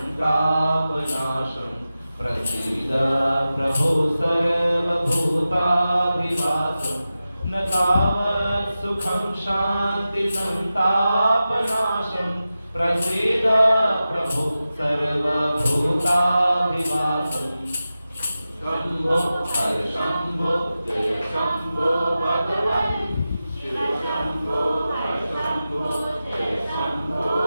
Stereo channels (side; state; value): both; inverted; correlation -0.93